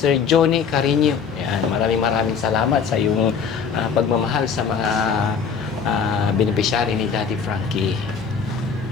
Johnny Carino. Yan, maraming salamat sa iyong pagmamahal sa mga beneficiary ni Daddy Frankie.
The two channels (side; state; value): right; quieter; 6.3 dB